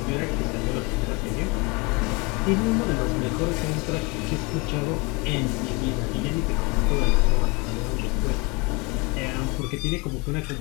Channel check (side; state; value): right; quieter; 28.1 dB